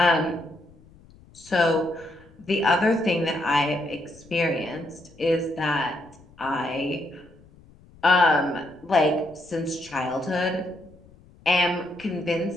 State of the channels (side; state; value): left; noise; rumble, 25 dB below the sound